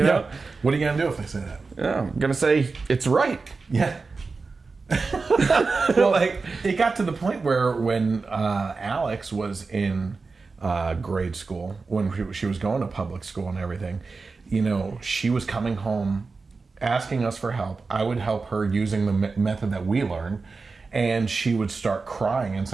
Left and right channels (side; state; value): left; quieter; 4.2 dB